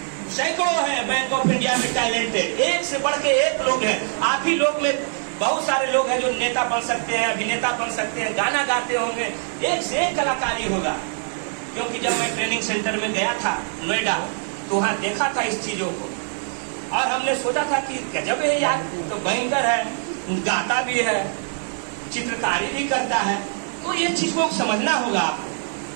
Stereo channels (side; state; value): left; silent; 61 dB below the other